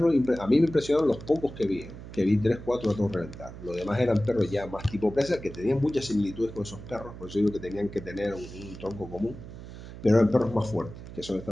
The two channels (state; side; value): noise; right; hum, 13 dB below the sound